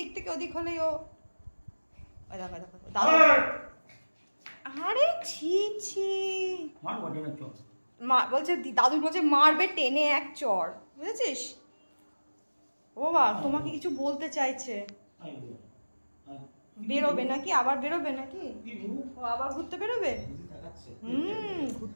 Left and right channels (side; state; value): both; inverted; correlation -1.00